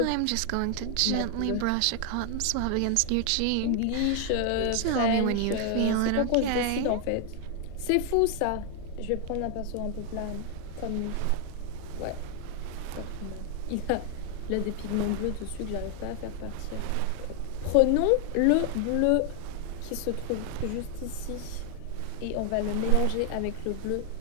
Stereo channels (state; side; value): different; both; correlation 0.00